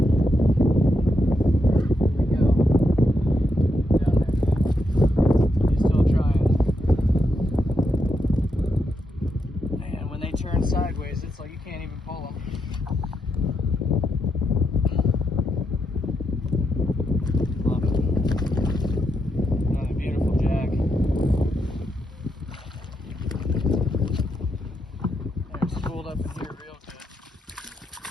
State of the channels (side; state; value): both; normal; correlation 0.82